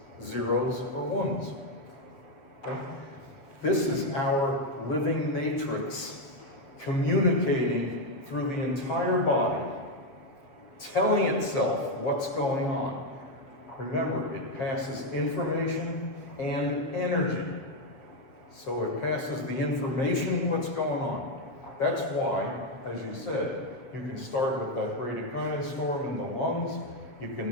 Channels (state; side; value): late; right; 7.4 ms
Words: zeros or ones. Okay? This is our living matrix communicating through the entire body, telling itself what's going on. Remember, it passes information and energy. So it passes the information, what's going on. That's why, as you said, you can start with that bradykinin storm in the lungs. You